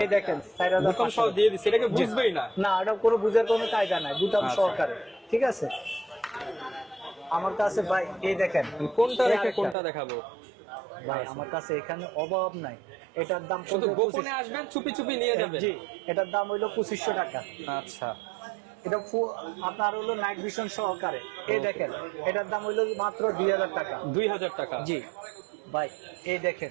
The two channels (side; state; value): left; drops out; at 9.8 s